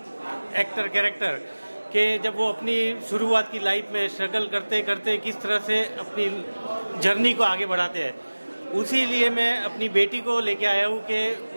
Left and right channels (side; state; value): both; inverted; correlation -1.00